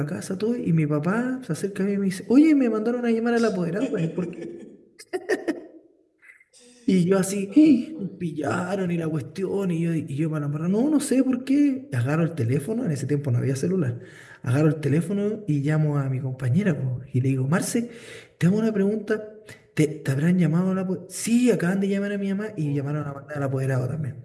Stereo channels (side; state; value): both; identical; correlation 1.00